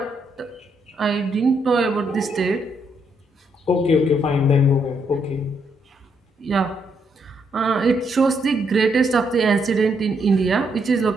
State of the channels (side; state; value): both; normal; correlation 0.75